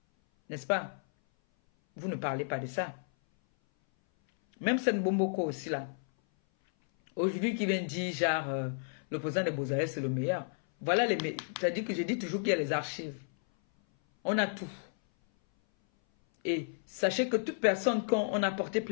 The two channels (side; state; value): right; silent; 56 dB below the other